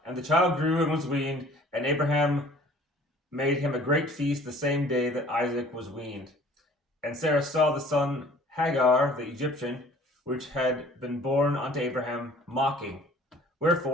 child grew and was weaned, and Abraham made him a great feast the same day that Isaac was weaned. And Sarah saw the son Hagar, the Egyptian, which had been born unto Abraham, mocking.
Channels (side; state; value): both; normal; correlation 0.51